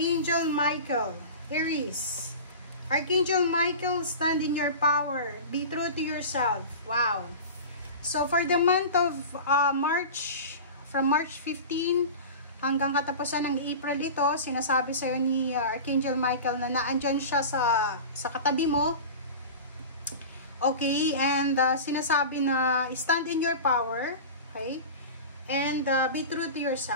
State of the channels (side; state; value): both; inverted; correlation -0.32